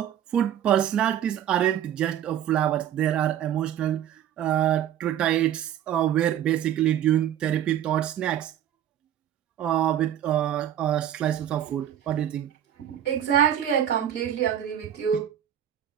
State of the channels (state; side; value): quieter; left; 10.6 dB